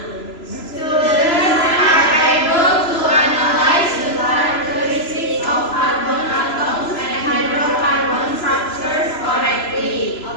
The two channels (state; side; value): late; right; 3.0 ms